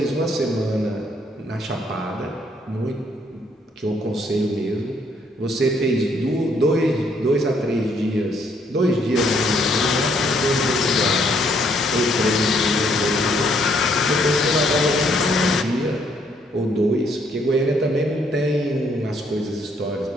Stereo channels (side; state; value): both; normal; correlation 0.68